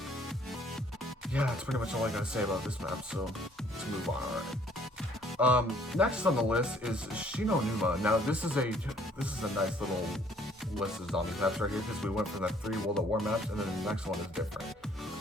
yeah, that's pretty much all I gotta say about this map. So let's move on. All right. Next on the list is Numa. Now this is a nice little list of zombies maps right here, because we went from the 3 World at War maps, and then the next one is different.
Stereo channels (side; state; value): both; normal; correlation 0.60